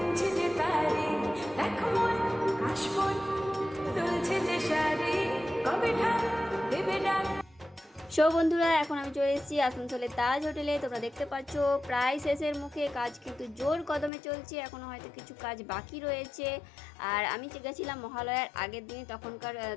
যে তারি দেখ মন কাশবন দুলছে যে শাড়ি কবে ঠাক দেবে ডাক। সো বন্ধুরা, এখন আমি চলে এসেছি আসানসোলের তাজ হোটেলে। তোমরা দেখতে পাচ্ছ প্রায় শেষের মুখে, কাজ কিন্তু জোর কদমে চলছে, এখনও হয়তো কিছু কাজ বাকি রয়েছে। আর আমি গেছিলাম মহালয়ার আগের দিনে, তখনকার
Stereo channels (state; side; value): drops out; right; at 14.1 s